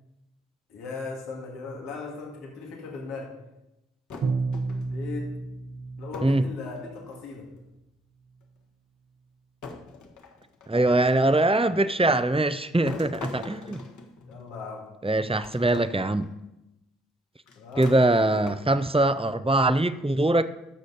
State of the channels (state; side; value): normal; both; correlation 0.68